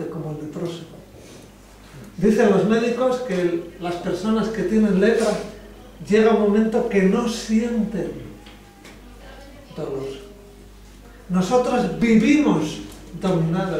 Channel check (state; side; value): identical; both; correlation 1.00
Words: como el leproso. Dicen los médicos que las personas que tienen lepra llega un momento que no sienten dolor. Nosotros vivimos